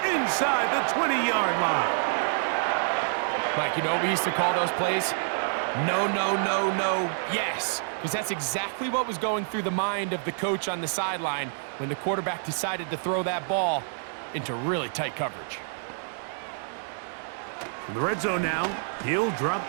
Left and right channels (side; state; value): left; silent; digital silence